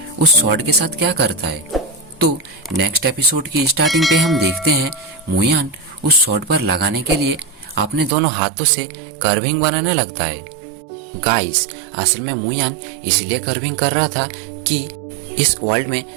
उस स्वॉर्ड के साथ क्या करता है। तो नेक्स्ट एपिसोड की स्टार्टिंग पे हम देखते हैं मुयान उस स्वॉर्ड पर लगाने के लिए अपने दोनों हाथों से कर्विंग बनाने लगता है। गाइस, असल में मुयान इसलिए कर्विंग कर रहा था कि इस वर्ल्ड में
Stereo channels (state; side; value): drops out; left; at 8.1 s